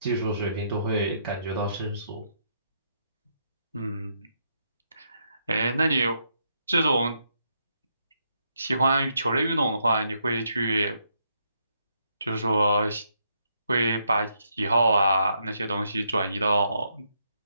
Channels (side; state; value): both; inverted; correlation -0.77